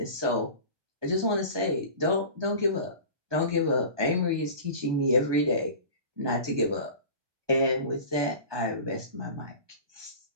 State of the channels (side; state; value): left; late; 1.2 ms